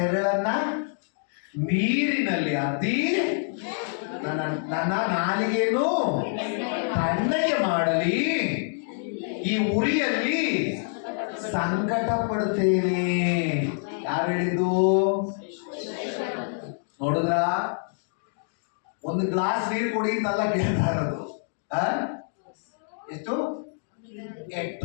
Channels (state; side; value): silent; right; digital silence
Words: ನೀರಿನಲ್ಲಿ ಅದ್ದಿ ನನ್ನ ನಾಲಿಗೆಯನ್ನು ತಣ್ಣಗೆ ಮಾಡಲಿ ಈ ಉರಿಯಲ್ಲಿ ಸಂಕಟ ಪಡ್ತೇನೆ. ಯಾರು ಹೇಳಿದ್ದು? ನೋಡಿದ್ರ, ಒಂದು ಗ್ಲಾಸ್ ನೀರು ಕುಡಿ ಅಂತೆಲ್ಲ ಕೇಳ್ತಾ ಇರೋದು. ಎಷ್ಟು? A